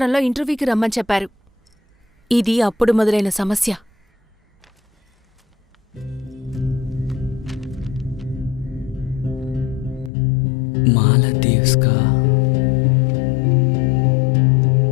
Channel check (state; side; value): drops out; right; at 10.1 s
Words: ఇంటర్వ్యూకి రమ్మని చెప్పారు. ఇది అప్పుడు మొదలైన సమస్య. మాలదీవ్స్కా?